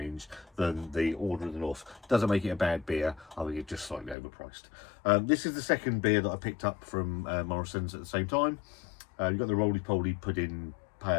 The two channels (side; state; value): right; drops out; at 4.2 s